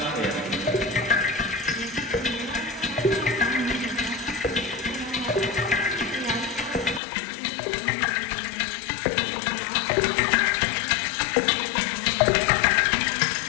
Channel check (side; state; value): right; drops out; at 7.0 s